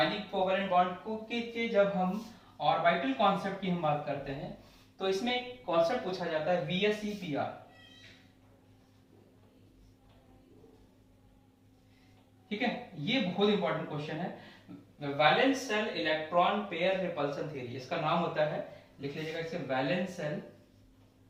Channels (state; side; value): identical; both; correlation 1.00